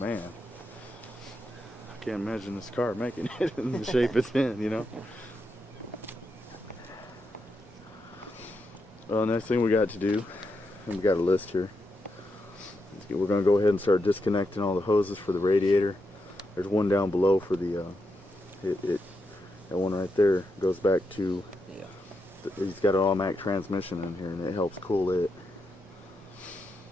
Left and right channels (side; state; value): both; normal; correlation 0.84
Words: I can't imagine this car making it in the shape it's in, you know. Well, next thing we got to do, and we got a list here. We're going to go ahead and start disconnecting all the hoses for the radiator. There's one down below for the that one right there goes back to. Yeah. He's got an automatic transmission in here, and it helps cool it.